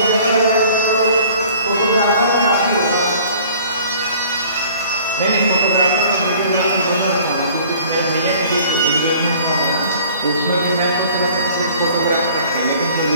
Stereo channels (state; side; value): inverted; both; correlation -0.51